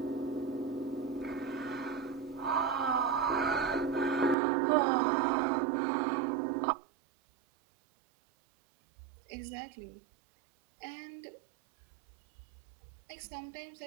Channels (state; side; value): drops out; left; at 4.4 s